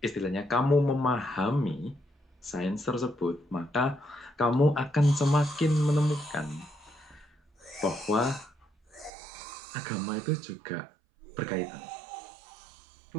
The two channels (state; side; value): drops out; left; at 9.1 s